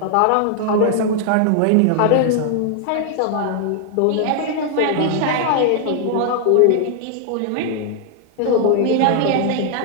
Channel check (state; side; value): different; both; correlation 0.00